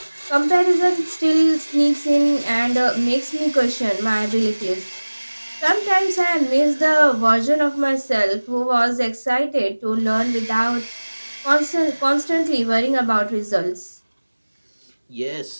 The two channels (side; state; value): both; inverted; correlation -1.00